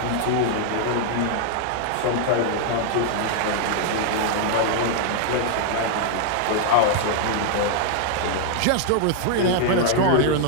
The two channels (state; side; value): different; both; correlation 0.00